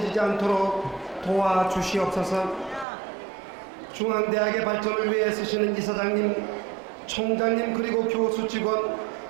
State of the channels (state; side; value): drops out; left; at 2.9 s